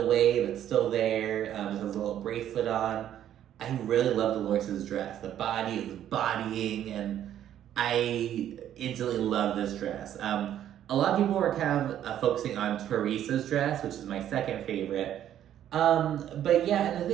way, but still there. Just has a little bracelet on. I really love Dolores' dress. The body is bodying, and I instantly love this dress. A lot of people were kind of focusing on Teresa's dress, which is my second favorite. But yeah, and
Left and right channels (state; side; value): quieter; left; 10.9 dB